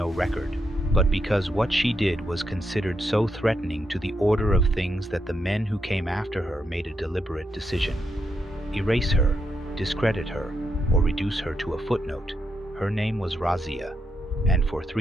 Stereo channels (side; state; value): both; normal; correlation 0.82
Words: record, but because what she did was considered so threatening to the order of things that the men who came after her made a deliberate decision. Erase her, discredit her, or reduce her to a footnote. Her name was Razia, and for